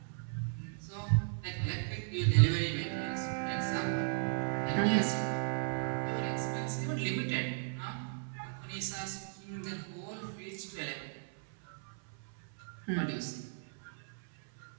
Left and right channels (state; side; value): silent; left; 54 dB below the other